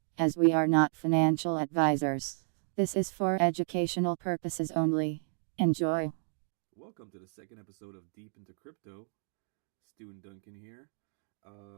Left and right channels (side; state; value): left; silent; digital silence